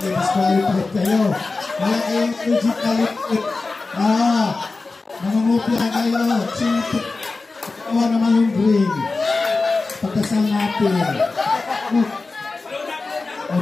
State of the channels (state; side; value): quieter; right; 3.7 dB